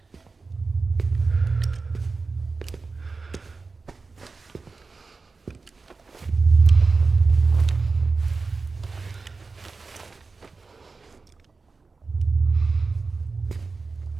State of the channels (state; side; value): quieter; left; 4.2 dB